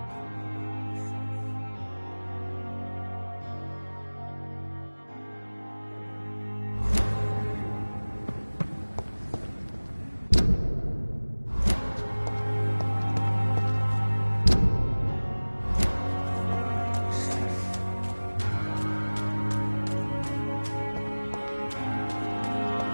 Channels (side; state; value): both; inverted; correlation -1.00